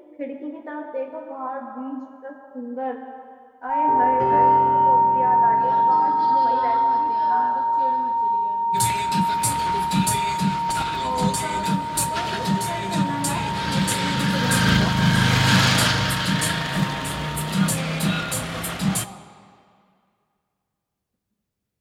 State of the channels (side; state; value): both; identical; correlation 1.00